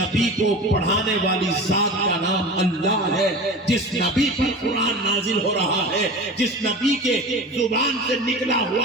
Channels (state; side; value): normal; both; correlation 0.33